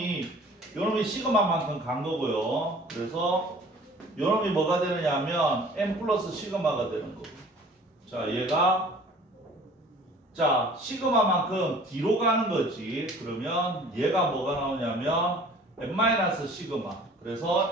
시그마만큼 간 거고요. 그래서 요놈이 뭐가 되느냐 하면 M 플러스 시그마가 되는 거고. 자, 얘가 자 시그마만큼 뒤로 가는 거지. 그러면 얘가 뭐가 나오냐면 M 마이너스 시그마. 그래서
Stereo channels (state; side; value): normal; both; correlation 0.49